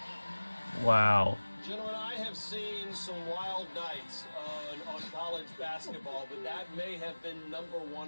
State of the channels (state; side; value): inverted; both; correlation -1.00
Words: Wow. Gentlemen, I have seen some wild nights on college basketball, but that may have been #1